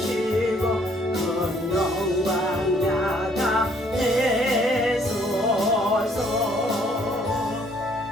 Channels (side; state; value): both; normal; correlation 0.64